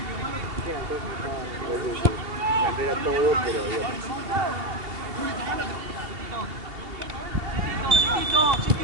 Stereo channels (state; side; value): late; left; 2.8 ms